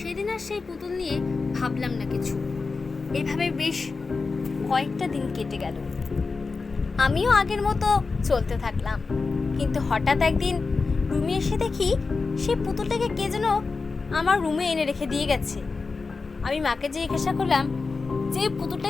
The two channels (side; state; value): right; quieter; 4.3 dB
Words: আর সেই পুতুল নিয়ে ভাবলাম না কিছু। এভাবে বেশ কয়েকটা দিন কেটে গেল। আমিও আগের মতো চলতে থাকলাম। কিন্তু হঠাৎ একদিন রুমে এসে দেখি সেই পুতুলটাকে কে যেন আমার রুমে এনে রেখে দিয়ে গেছে। আমি মাকে জিজ্ঞাসা করলাম যে